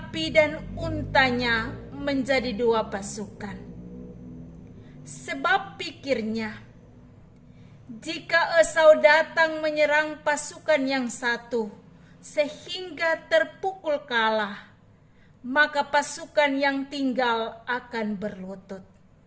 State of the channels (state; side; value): identical; both; correlation 1.00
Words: dan untanya menjadi 2 pasukan. Sebab pikirnya, jika Esau datang menyerang pasukan yang satu sehingga terpukul kalah, maka pasukan yang tinggal akan berlutut.